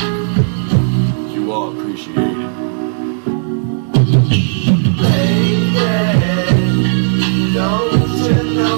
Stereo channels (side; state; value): left; silent; digital silence